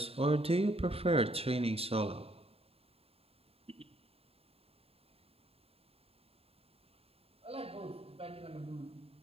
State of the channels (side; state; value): left; late; 0.28 ms